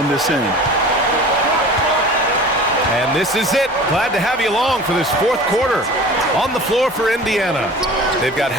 this end. And this is it. Glad to have you along for this fourth quarter. On the floor for Indiana, they've got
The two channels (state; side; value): normal; both; correlation 0.40